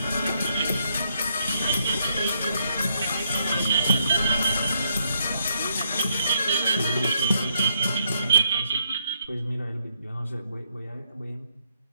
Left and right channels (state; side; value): inverted; both; correlation -0.76